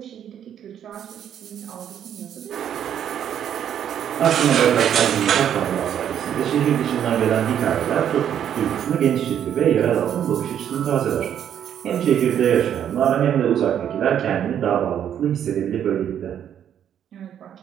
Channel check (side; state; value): left; quieter; 9.6 dB